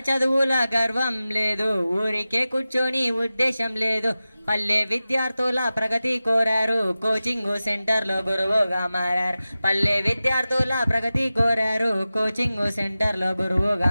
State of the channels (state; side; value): inverted; both; correlation -0.95